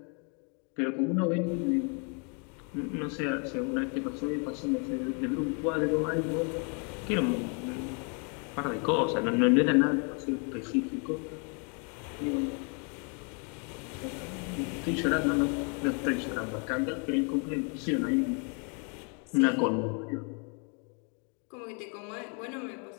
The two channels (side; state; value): right; quieter; 37.4 dB